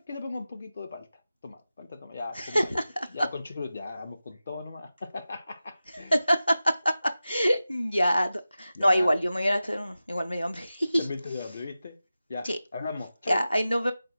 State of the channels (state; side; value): inverted; both; correlation -0.94